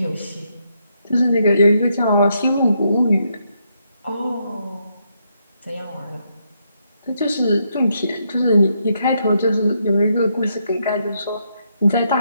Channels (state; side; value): inverted; both; correlation -0.78